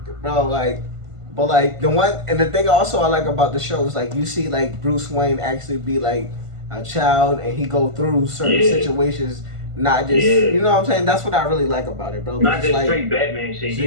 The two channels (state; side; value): late; left; 1.5 ms